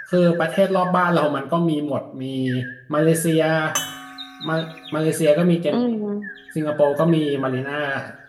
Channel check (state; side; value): identical; both; correlation 1.00